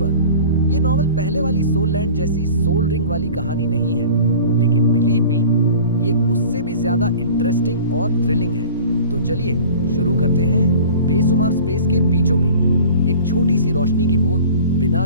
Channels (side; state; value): both; inverted; correlation -0.42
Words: ये नॉवल पहले वाली सोल लैंड जैसी सोल रिंग वाली कहानी नहीं है, लेकिन बिलीव मी, ये उससे भी ज्यादा इंटरेस्टिंग और थ्रिलिंग है। तो चलिए शुरू करते हैं। बेशुमार स्पेस के बीचों बीच एक छोटी सी रोशनी की बूंद